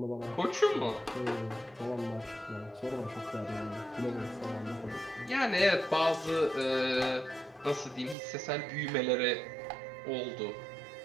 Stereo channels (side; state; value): left; drops out; at 8.2 s